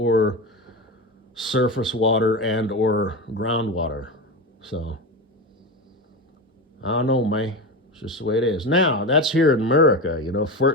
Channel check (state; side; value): normal; both; correlation 0.21